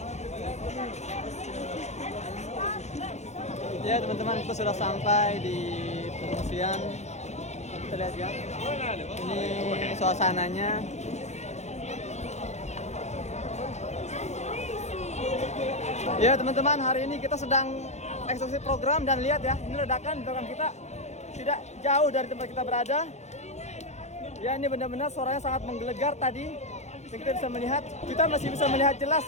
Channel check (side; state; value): right; late; 0.33 ms